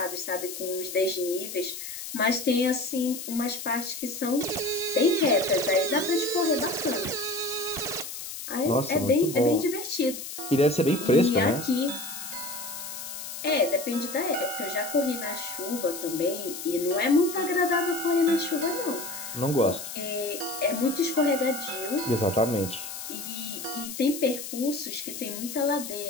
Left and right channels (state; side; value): noise; left; hiss, 9 dB below the sound